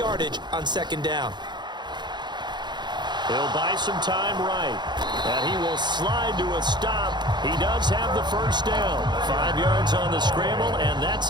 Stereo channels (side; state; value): left; late; 0.21 ms